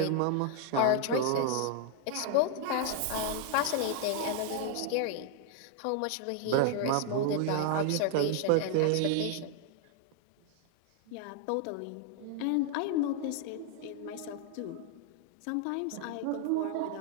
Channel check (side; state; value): both; different; correlation 0.00